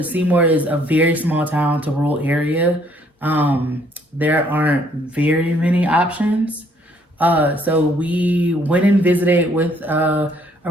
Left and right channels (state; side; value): normal; both; correlation 0.65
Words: Seymour is a very small town to rural area. There aren't very many options. So we went and visited with a